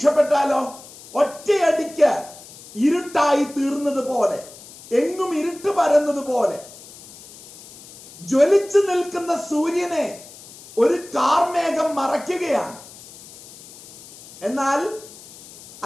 ഒറ്റയടിക്ക് ഇരുട്ടായി തീർന്നത് പോലെ, എങ്ങും ഇരുട്ട് പരന്നത് പോലെ ജ്വലിച്ചു നിൽക്കുന്ന സൂര്യനെ ഒരു കാർമേഘം മറയ്ക്കുകയാണ്. എന്നാൽ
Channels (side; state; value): left; noise; hiss, 19 dB below the sound